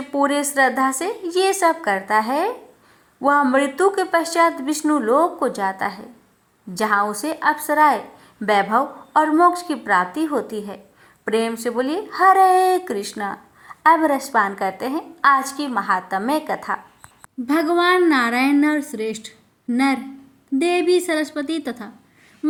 पूरे श्रद्धा से ये सब करता है, वह मृत्यु के पश्चात विष्णु लोक को जाता है, जहाँ उसे अप्सराएं, वैभव और मोक्ष की प्राप्ति होती है। प्रेम से बोलिए हरे कृष्णा। अब रसपान करते हैं आज की महात्म्य कथा। भगवान नारायण नर श्रेष्ठ, नर देवी सरस्वती तथा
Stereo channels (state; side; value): identical; both; correlation 1.00